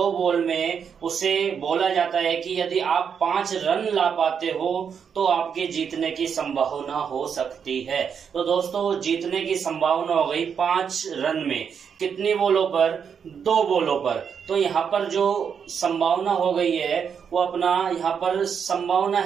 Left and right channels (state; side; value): quieter; left; 7.1 dB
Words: बॉल में उसे बोला जाता है कि यदि आप 5 रन ला पाते हो तो आपके जीतने की संभावना हो सकती है। तो दोस्तों जीतने की संभावना हो गई 5 रन में, कितनी बॉलों पर, 2 बॉलों पर। तो यहाँ पर जो संभावना हो गई है वो अपना यहाँ पर संभावना